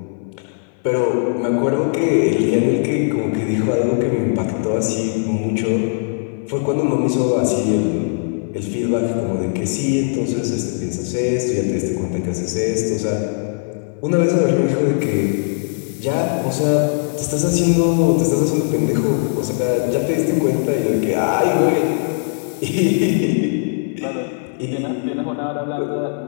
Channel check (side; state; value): right; silent; 59 dB below the other